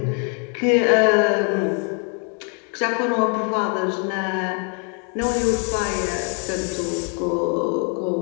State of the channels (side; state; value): right; quieter; 39.4 dB